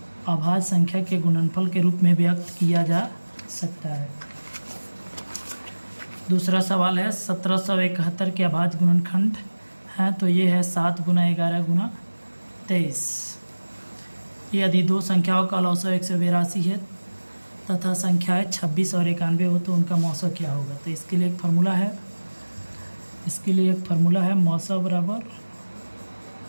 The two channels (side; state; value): both; inverted; correlation -1.00